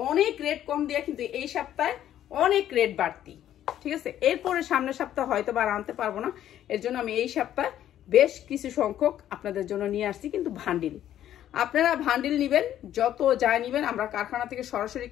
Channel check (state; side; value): quieter; right; 11.5 dB